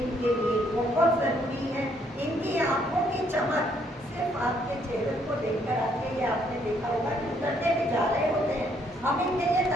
इनके लिए बहुत ज़रूरी है। इनकी आंखों की चमक सिर्फ आपके चेहरे को देखकर आती है। ये आपने देखा होगा कि उतरते भी जा रहे होते हैं, हम इनके लिए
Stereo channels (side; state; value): both; normal; correlation 0.69